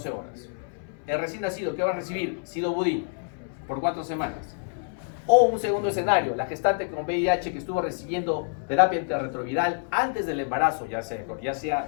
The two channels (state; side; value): silent; right; 60 dB below the other